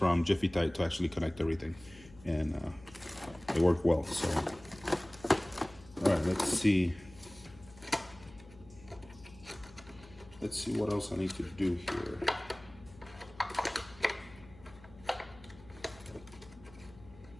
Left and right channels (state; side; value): noise; left; hum, 21 dB below the sound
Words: Jiffy Tight to actually connect everything, and it worked well. So, all right, let's see what else I need to do here.